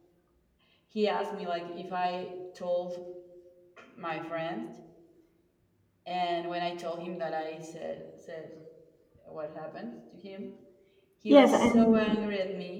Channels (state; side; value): identical; both; correlation 1.00